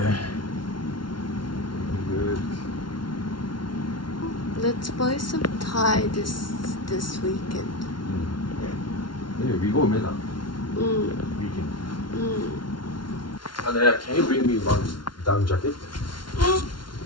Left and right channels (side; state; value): right; late; 0.72 ms